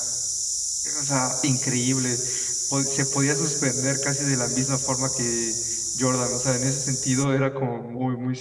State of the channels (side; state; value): both; identical; correlation 1.00